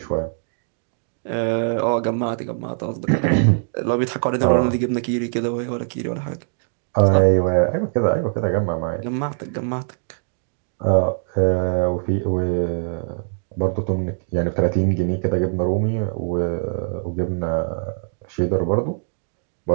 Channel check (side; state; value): left; silent; digital silence